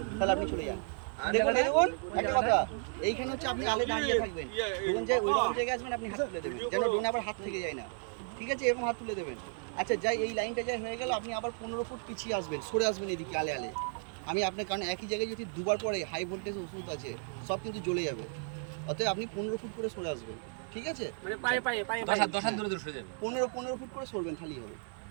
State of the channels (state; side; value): silent; left; 55 dB below the other